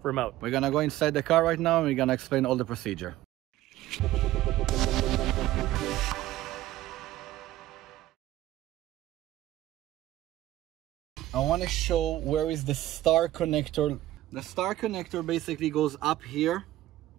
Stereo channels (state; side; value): quieter; left; 15.2 dB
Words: remote. We're going to go inside the car right now and we're going to explain all the procedure. I want to show where is the star connector. The star connector basically goes up here,